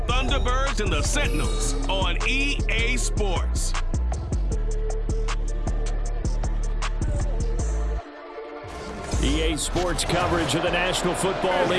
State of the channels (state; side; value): identical; both; correlation 1.00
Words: Thunderbirds and the Sentinels on EA Sports. EA Sports coverage of the National Football